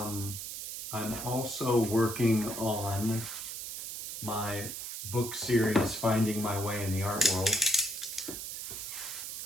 also working on my book series, Finding My Way in the Art World,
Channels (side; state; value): right; noise; hiss, 7 dB below the sound